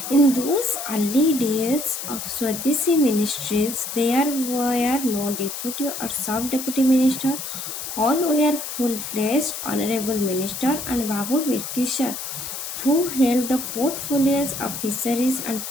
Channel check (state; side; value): noise; left; hiss, 7 dB below the sound